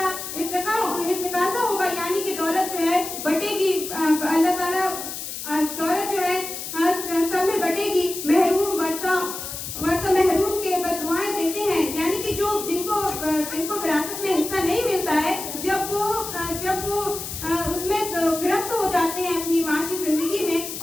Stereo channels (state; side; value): noise; left; hiss, 7 dB below the sound